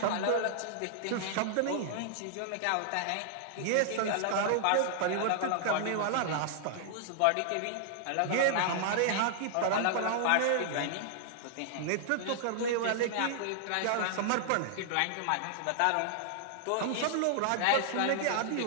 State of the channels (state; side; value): different; both; correlation -0.01